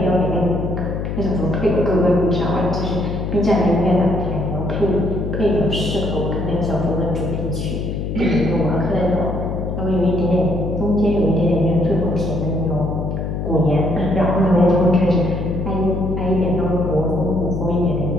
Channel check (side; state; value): left; noise; hum, 3 dB below the sound